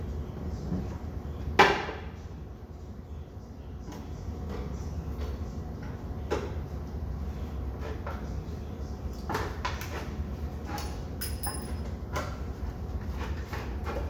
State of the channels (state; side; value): identical; both; correlation 1.00